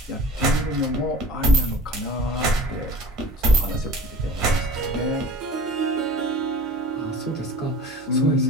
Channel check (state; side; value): normal; both; correlation 0.42